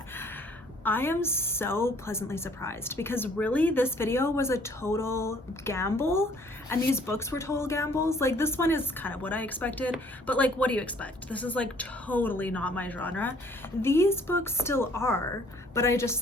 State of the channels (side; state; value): both; normal; correlation 0.58